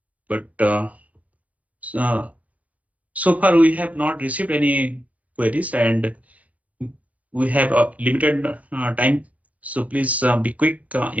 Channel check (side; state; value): left; late; 0.069 ms